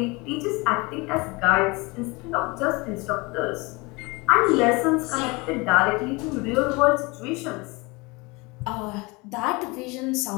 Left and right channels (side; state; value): right; quieter; 25.6 dB